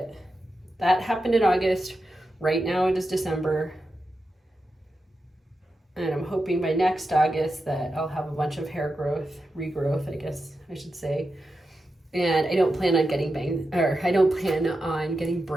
that happened in August. Right now it is December, and I'm hoping by next August that I'll have a bunch of hair growth, regrowth, I guess I should say. And I don't plan on getting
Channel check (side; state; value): both; normal; correlation 0.90